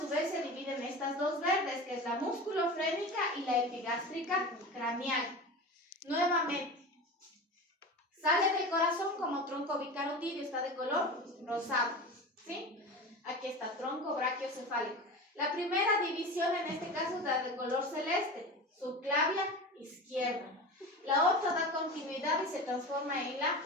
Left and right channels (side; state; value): both; normal; correlation 0.30